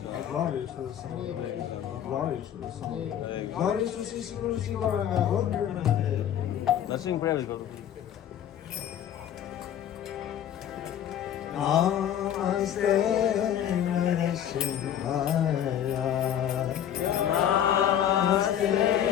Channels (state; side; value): quieter; right; 10.1 dB